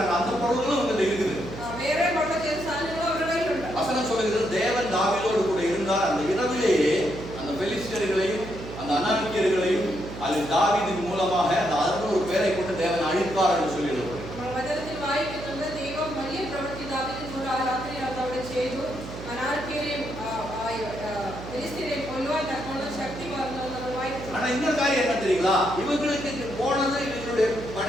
அந்த பொருளும் இவங்க இருக்குது. വേറെ കൊള്ള ചെയ്ത സാധനങ്ങളും അവരുടെ കയ്യിലുണ്ട്. வசனம் சொல்லுகிறது தேவன் தாவீதோடு கூட இருந்தார். அந்த இரவிலேயே அந்த பெலிஸ்தர்களையும் அந்த அனானியர்களையும் அதில் தாவீதின் மூலமாக அந்த 600 பேரை கொண்டு தேவன் அழித்தார் என்று சொல்லியிருக்கிறது. നമ്മൾ വചനത്തിൽ വായിക്കുന്നുണ്ട് ദൈവം വലിയ പ്രവൃത്തി ദാവീദിനോട് ആ രാത്രി അവിടെ ചെയ്തു. അനാർക്കിയെയും ഫിലിസ്തീനെയും കൊല്ലുവാൻ തക്കോണം ശക്തി പകർന്നു നമ്മൾ വായിക്കുന്നു. ஆனா இன்னொரு காரியம் என்ன தெரியுங்களா? இவங்களுக்கு போனது இவங்களுடைய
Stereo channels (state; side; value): noise; right; hum, 11 dB below the sound